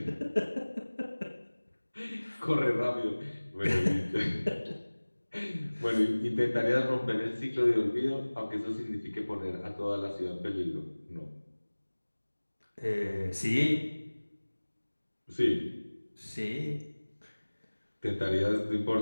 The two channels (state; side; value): inverted; both; correlation -1.00